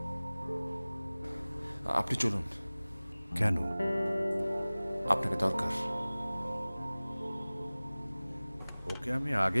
আপনি চলুন। কেন? আপনাকে দরকার। ওকে আমি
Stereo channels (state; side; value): inverted; both; correlation -0.99